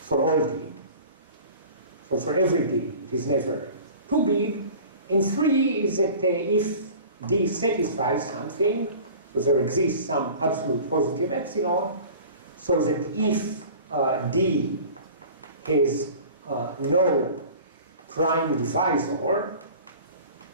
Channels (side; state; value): both; inverted; correlation -0.42